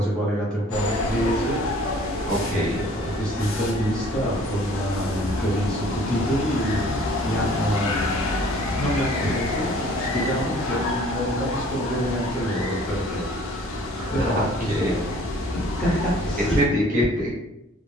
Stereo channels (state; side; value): normal; both; correlation 0.53